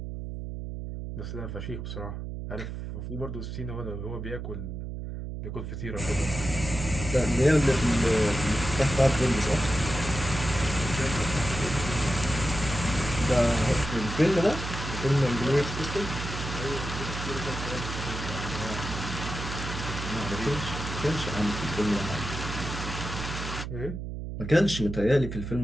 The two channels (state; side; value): noise; right; hum, 6 dB below the sound